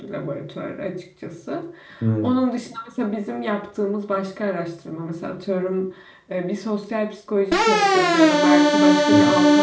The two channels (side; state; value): both; identical; correlation 1.00